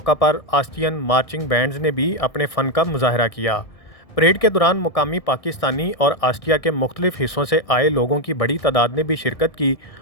پر آسٹریین مارچنگ بینڈز نے بھی اپنے فن کا مظاہرہ کیا۔ پریڈ کے دوران مقامی پاکستانی اور آسٹریا کے مختلف حصوں سے آئے لوگوں کی بڑی تعداد نے بھی شرکت کی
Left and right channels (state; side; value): late; right; 1.6 ms